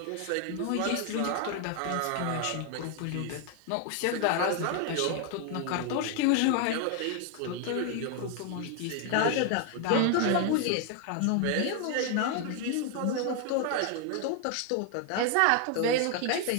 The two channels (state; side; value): different; both; correlation 0.00